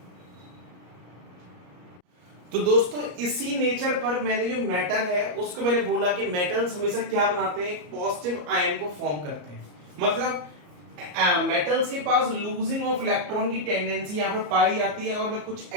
तो दोस्तों इसी नेचर पर मैंने जो मेटल है उसको मैंने बोला कि मेटल्स हमेशा क्या बनाते हैं, एक पॉजिटिव आयन को फॉर्म करते हैं। मतलब मेटल्स के पास लूजिंग ऑफ इलेक्ट्रॉन की टेंडेंसी यहाँ पर पाई जाती है। और मैं कुछ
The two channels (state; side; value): late; left; 34 ms